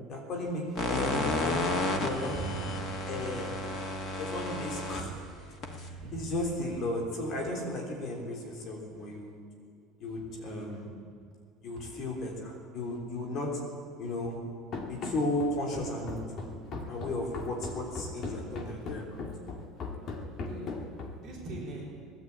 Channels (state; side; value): normal; both; correlation 0.37